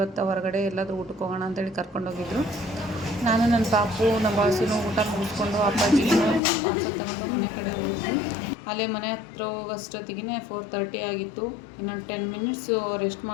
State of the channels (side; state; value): right; drops out; at 6.4 s